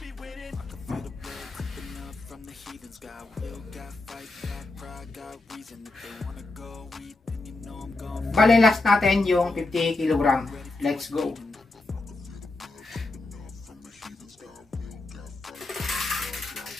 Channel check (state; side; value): quieter; right; 3.2 dB